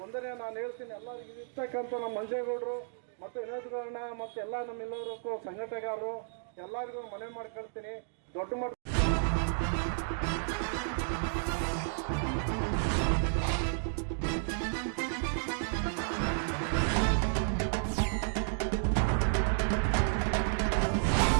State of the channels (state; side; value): silent; left; digital silence